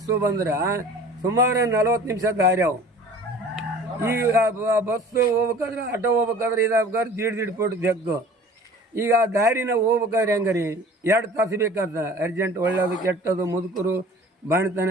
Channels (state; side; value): normal; both; correlation 0.45